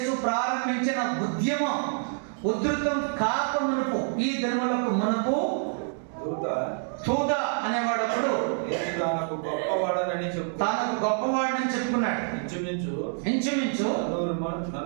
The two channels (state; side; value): silent; left; 60 dB below the other